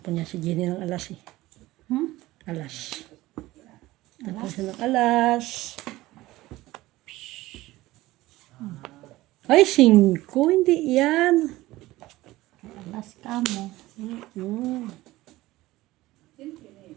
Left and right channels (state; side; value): quieter; left; 17.8 dB